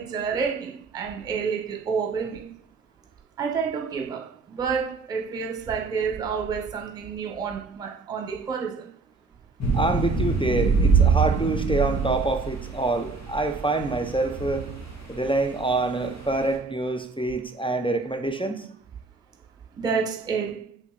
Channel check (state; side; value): quieter; left; 3.8 dB